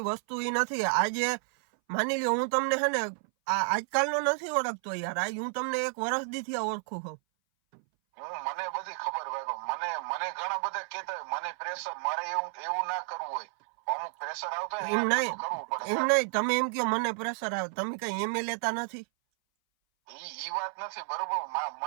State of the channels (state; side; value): silent; left; 57 dB below the other